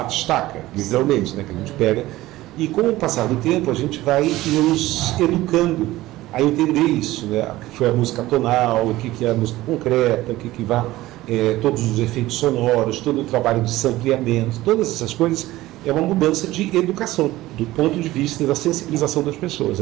literalmente, né, que a gente pega. E com o passar do tempo, a gente vai nos educando a entender isso, né? O que foi a música tonal, o que é a música concreta, o que vai, todos os efeitos sonoros, todo o trabalho de sampleamento, todas essas coisas é uma mudança de educação, do ponto de vista da sensibilização das pessoas.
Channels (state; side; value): quieter; left; 17.0 dB